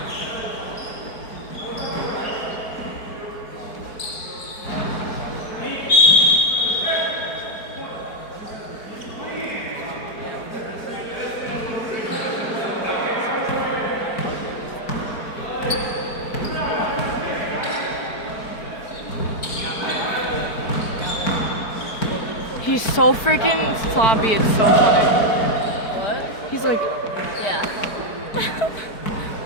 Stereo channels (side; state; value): right; late; 4.5 ms